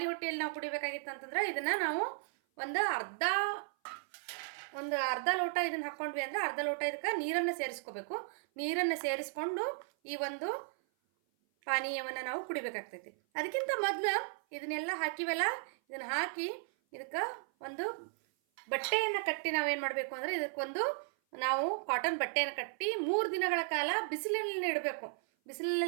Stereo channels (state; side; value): silent; left; 54 dB below the other